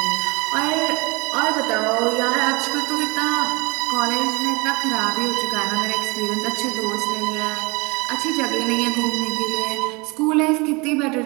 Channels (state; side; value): quieter; left; 26.9 dB